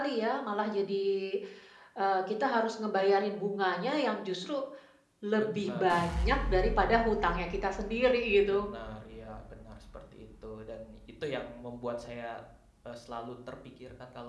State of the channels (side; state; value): both; identical; correlation 1.00